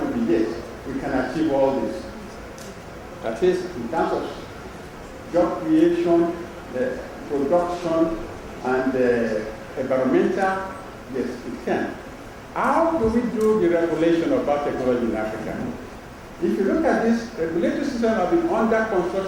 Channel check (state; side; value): identical; both; correlation 1.00